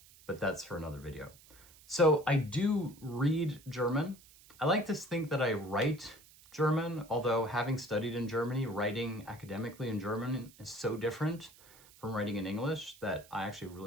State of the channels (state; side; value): noise; right; hiss, 24 dB below the sound